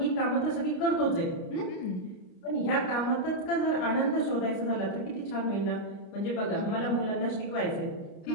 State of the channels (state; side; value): late; right; 29 ms